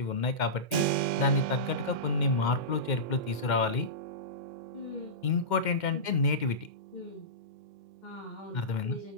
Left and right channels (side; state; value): right; late; 2.1 ms